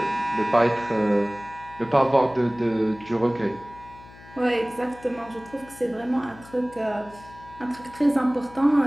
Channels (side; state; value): left; noise; hum, 21 dB below the sound